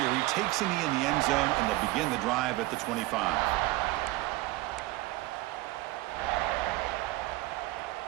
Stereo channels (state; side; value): quieter; left; 19.0 dB